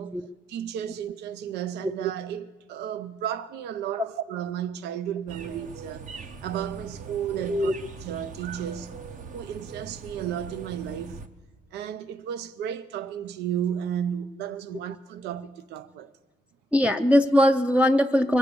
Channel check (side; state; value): both; normal; correlation 0.73